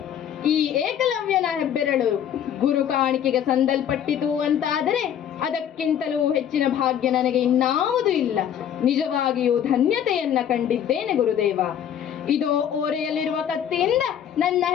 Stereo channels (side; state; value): right; quieter; 9.5 dB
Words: ಈ ಏಕಲವ್ಯನ ಹೆಬ್ಬೆರಳು ಗುರು ಕಾಣಿಕೆಗೆ ಸಂದಲ್ಪಟ್ಟಿತು ಅಂತಾದರೆ ಅದಕ್ಕಿಂತಲೂ ಹೆಚ್ಚಿನ ಭಾಗ್ಯ ನನಗೆ ಇನ್ನಾವುದೂ ಇಲ್ಲ. ನಿಜವಾಗಿಯೂ ಧನ್ಯತೆಯನ್ನ ಕಂಡಿದ್ದೇನೆ ಗುರುದೇವ. ಇದೋ ಓರೆಯಲ್ಲಿರುವ ಕತ್ತಿಯಿಂದ ನನ್ನ